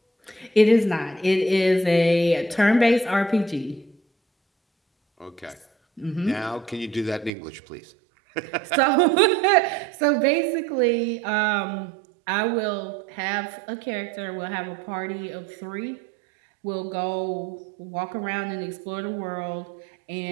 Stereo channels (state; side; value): drops out; left; at 7.3 s